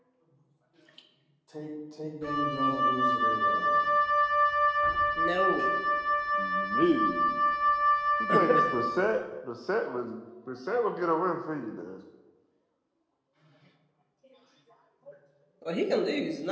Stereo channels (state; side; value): identical; both; correlation 1.00